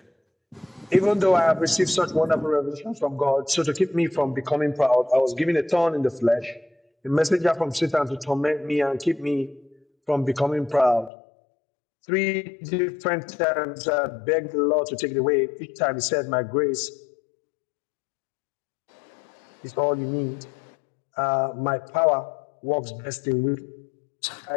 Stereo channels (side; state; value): right; drops out; at 11.1 s